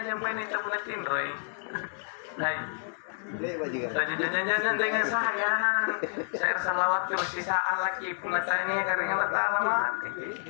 main itu punatin roy lain jangan dengan saya salawat terus sisaan lagi punatanya karena Allah mati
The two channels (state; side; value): silent; right; 58 dB below the other